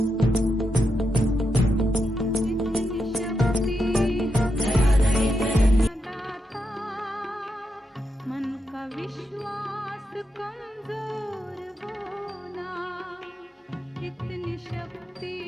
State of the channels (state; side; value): normal; both; correlation 0.84